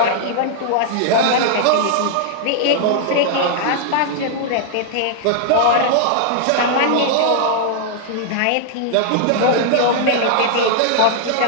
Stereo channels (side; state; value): both; different; correlation -0.01